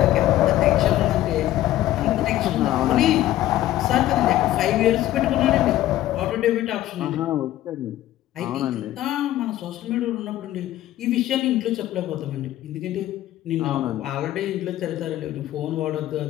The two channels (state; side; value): quieter; right; 14.1 dB